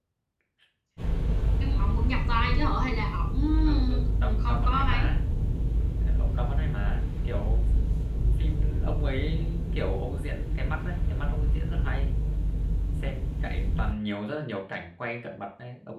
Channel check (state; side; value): identical; both; correlation 1.00